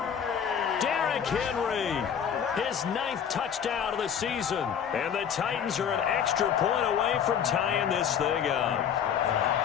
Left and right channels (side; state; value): right; quieter; 8.1 dB